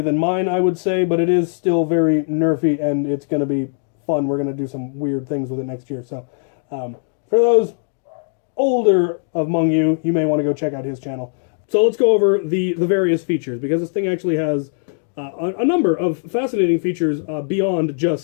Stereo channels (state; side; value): silent; right; 60 dB below the other